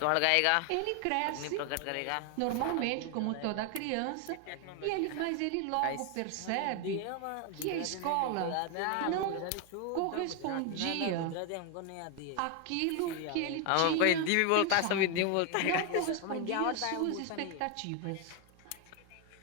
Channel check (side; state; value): both; different; correlation 0.01